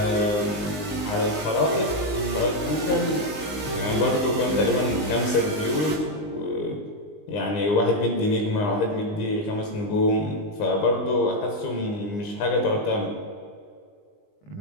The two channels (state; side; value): late; right; 19 ms